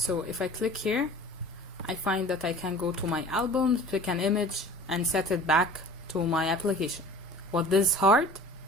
if I click here, I find that I can go to my albums, pick an image, and set it back to my application. What this hard?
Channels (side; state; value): both; normal; correlation 0.42